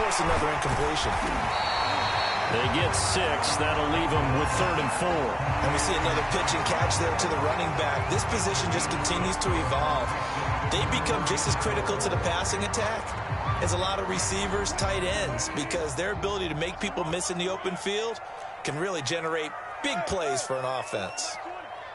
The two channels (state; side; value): identical; both; correlation 1.00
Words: another incompletion. They get 6. That'll leave them with 3rd and 4. And we see another pitch and catch there to the running back. This position just continues to evolve. They become just as critical to the passing attack as a lot of receivers, tight ends, because their ability to make people miss in the open field can really generate big plays for an offense.